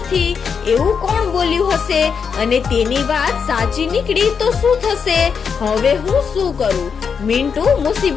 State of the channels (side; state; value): right; quieter; 6.3 dB